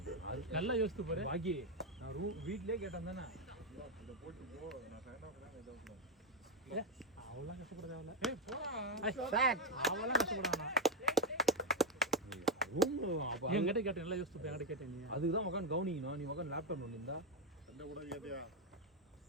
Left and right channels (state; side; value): normal; both; correlation 0.06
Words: நல்லா யோசித்து பாரு பாக்கி நான் வீட்லயே கேட்டேன் தானே இத போட்டு போ நான் ஃபேனா ஏதோ அவ்வளவு கஷ்டப்பட தேவையில்ல ஏய் போடா அவ்வளவு கஷ்டப்படானா ரூம் அப்ப என்கிட்ட கேட்டேன் நல்லா யோசித்து போய் என்கிட்ட கேட்டேன் நீ அதுக்கு தான் உட்காந்து கவனிக்கணும் நீ உட்காந்து லேப்டாப் பண்ணிருந்தா சண்டை கூட கேட்டியா